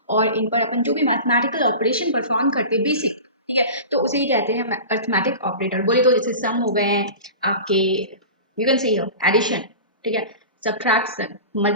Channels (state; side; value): inverted; both; correlation -0.33